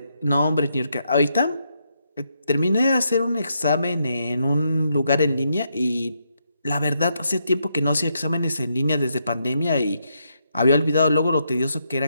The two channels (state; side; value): inverted; both; correlation -0.79